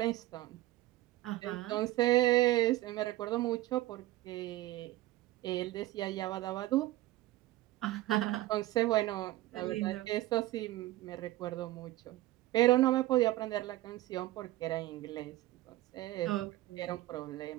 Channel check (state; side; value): quieter; left; 16.7 dB